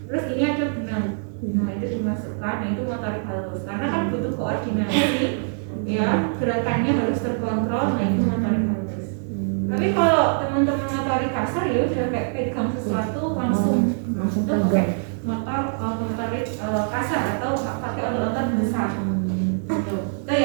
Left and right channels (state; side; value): silent; left; digital silence